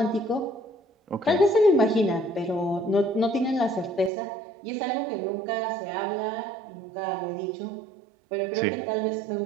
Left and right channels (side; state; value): left; drops out; at 4.1 s